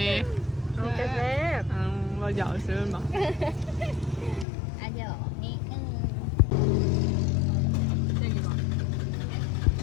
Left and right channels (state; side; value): drops out; right; at 4.5 s